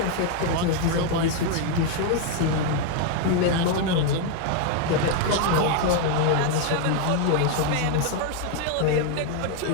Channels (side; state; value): both; different; correlation 0.00